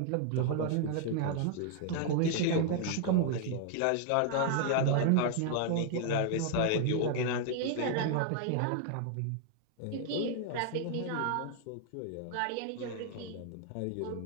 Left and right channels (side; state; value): both; different; correlation 0.00